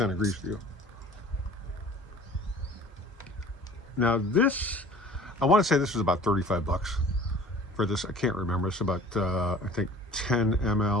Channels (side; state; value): both; normal; correlation 0.46